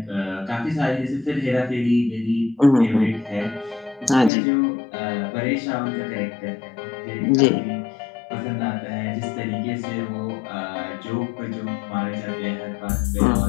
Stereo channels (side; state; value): right; drops out; at 4.3 s